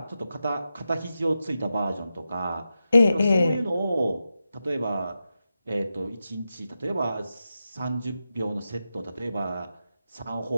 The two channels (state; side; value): inverted; both; correlation -0.90